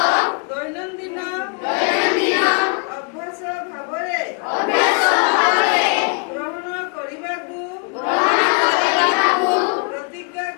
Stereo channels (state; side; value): quieter; right; 36.3 dB